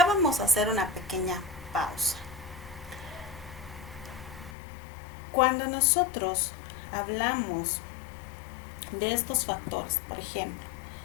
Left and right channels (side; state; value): right; drops out; at 4.5 s